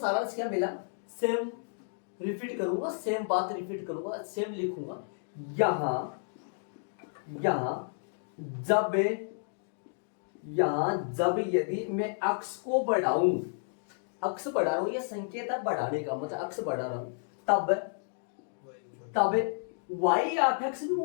क्या मिला, सेम रिपीट करूंगा, सेम बात रिपीट करूंगा, सेम लिखूंगा। यहां जब यदि मैं x को बढ़ाऊं, x बढ़ा रहा हूं, ये संकेत है बढ़ाने का, मतलब x बढ़ा रहा हूं, तब y या fx भी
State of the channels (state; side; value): silent; right; digital silence